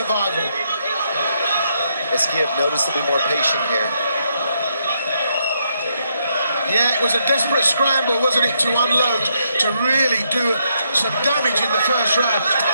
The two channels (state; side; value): inverted; both; correlation -0.77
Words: ESKIEV noticeably more patient here. Yeah, it was a desperate scramble, wasn't it, to unload, to really do some damage in the first round.